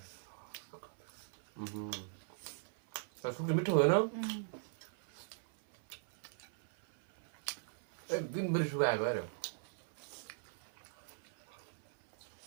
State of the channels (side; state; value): left; silent; 51 dB below the other